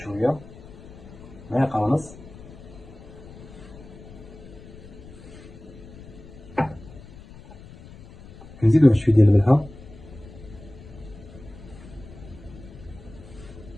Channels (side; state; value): left; noise; rumble, 18 dB below the sound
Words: معلقه ونص، كنزيدو واحد شويه ديال الملحه،